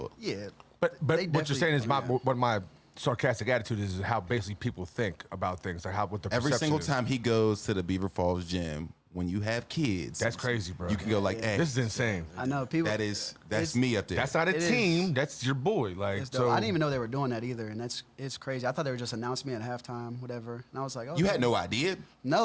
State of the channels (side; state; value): both; identical; correlation 1.00